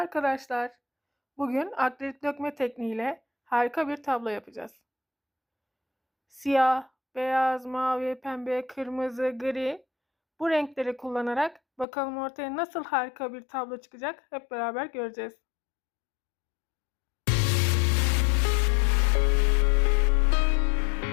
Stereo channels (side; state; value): right; drops out; at 11.9 s